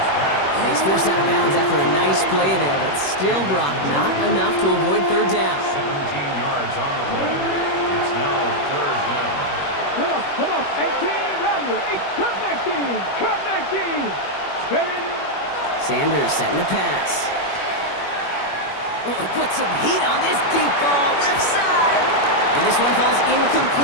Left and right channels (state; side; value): late; right; 21 ms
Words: he's forced out of bounds after a nice play there, but still, Brock, not enough to avoid third down. 17 yards on the play. It's now third down. Come on. 18, Rattler. 19. Cut 19. Steady. Sanders setting the pass. Oh, put some heat on this deep ball, left side. And this one falls